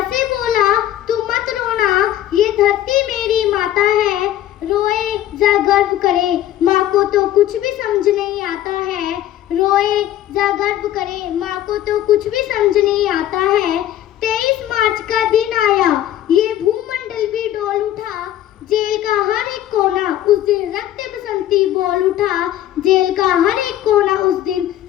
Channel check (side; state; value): right; quieter; 12.6 dB